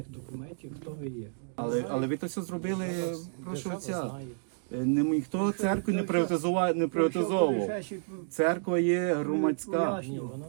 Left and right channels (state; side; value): silent; left; digital silence